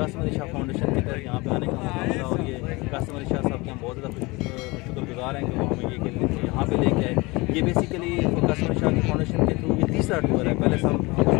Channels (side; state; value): right; quieter; 24.1 dB